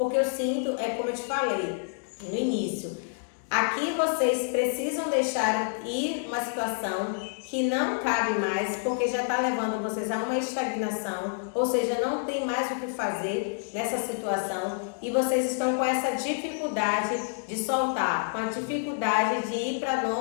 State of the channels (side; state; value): right; silent; digital silence